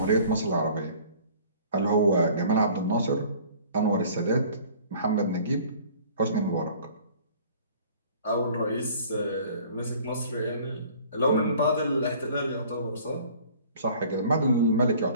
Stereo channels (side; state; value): both; inverted; correlation -0.50